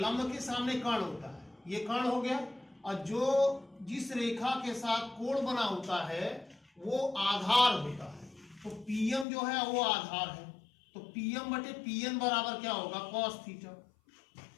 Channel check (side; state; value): right; drops out; at 9.2 s